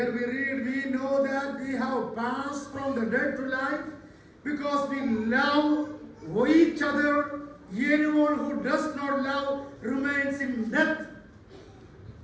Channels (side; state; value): both; identical; correlation 1.00